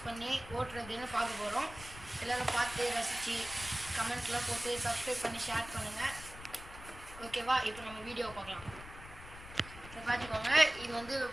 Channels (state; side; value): noise; left; rumble, 15 dB below the sound